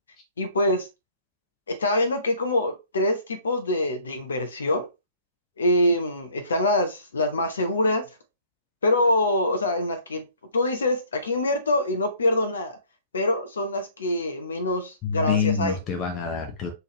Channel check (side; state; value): both; inverted; correlation -0.56